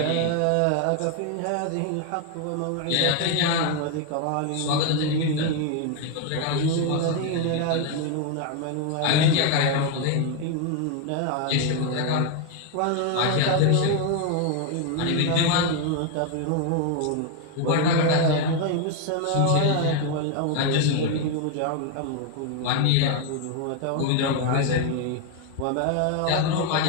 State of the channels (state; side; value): different; both; correlation 0.01